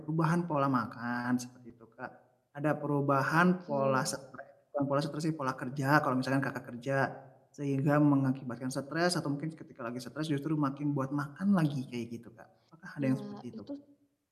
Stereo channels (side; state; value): both; identical; correlation 1.00